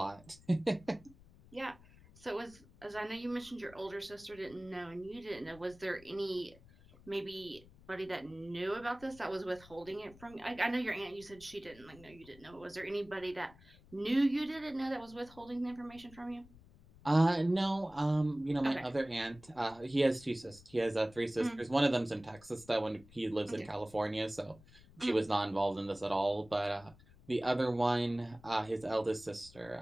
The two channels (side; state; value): left; noise; rumble, 23 dB below the sound